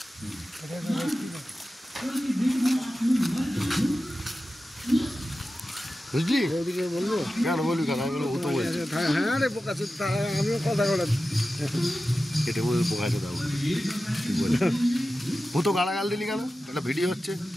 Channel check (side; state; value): both; normal; correlation 0.93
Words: বুঝলি? ওইদিকে বলবো কেন বলবি কেন? আমি বলবো ও তো বলছে হ্যাঁ রে বোকা আমিও কথা বলে কেটে বলে বোকাছে দাও, ঠিক বলে। ও তো গালাগাল দিলি কেন? একটা ভিডিও হচ্ছে।